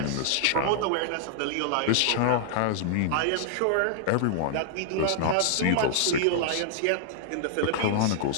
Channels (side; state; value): both; different; correlation -0.01